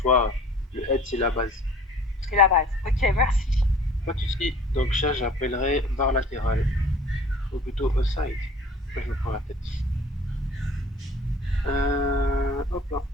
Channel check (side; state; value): both; normal; correlation 0.49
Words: le head c'est la base. C'est la base. Ok, merci. Pas de souci. Donc ça, j'appellerai barre latérale. Ou plutôt aside. Là, je me prends la tête. Hop là.